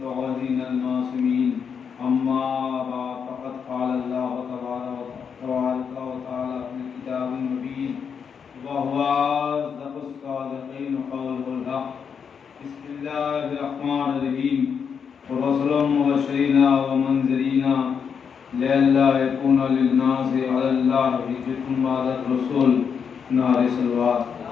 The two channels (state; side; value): quieter; right; 6.8 dB